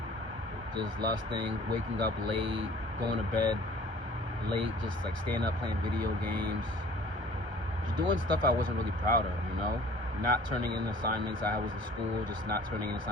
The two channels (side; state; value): left; late; 1.3 ms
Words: just lusting, waking up late, going to bed late, just like staying up playing video games, just doing stuff I wasn't really proud of, not turning in assignments. I was in school, just not turning in